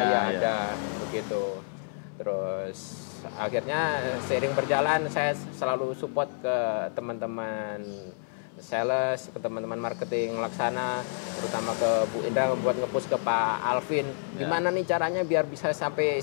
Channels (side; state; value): right; silent; 59 dB below the other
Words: ya ada begitu. Terus akhirnya seiring berjalan saya selalu support ke teman-teman sales, ke teman-teman marketing Laksana, terutama ke Bu Indra buat nge-push ke Pak Alvin. Gimana nih caranya biar bisa sampai